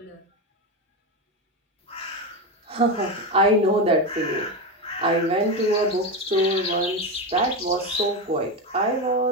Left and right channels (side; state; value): both; normal; correlation 0.15